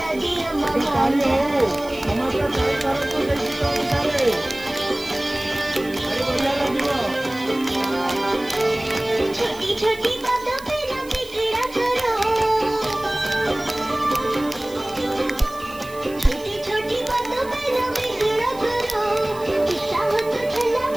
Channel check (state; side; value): noise; right; hiss, 20 dB below the sound